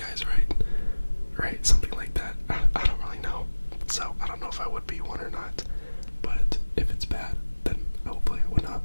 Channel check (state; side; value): inverted; both; correlation -1.00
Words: right, something like that. I don't really know, so I don't know if I would be one or not, but if it's bad, then hopefully I would not